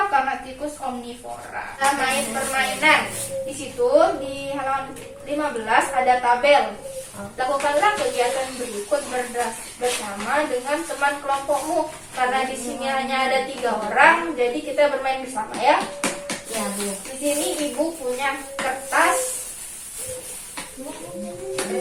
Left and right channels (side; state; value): both; identical; correlation 1.00